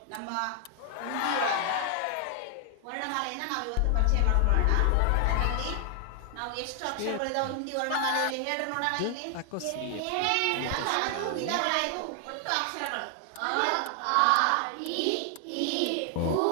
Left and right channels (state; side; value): different; both; correlation 0.00